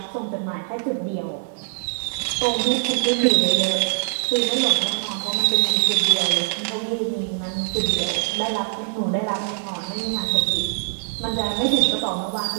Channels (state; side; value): silent; left; digital silence